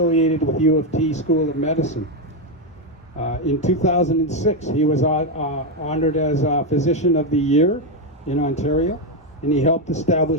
with U of T School of Medicine. In 2006, he was honored as Physician of the Year in Ontario, and he helped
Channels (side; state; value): both; normal; correlation 0.06